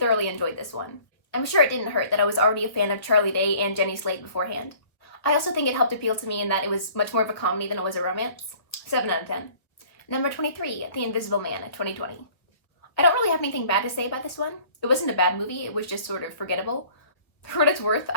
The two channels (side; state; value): right; late; 1.3 ms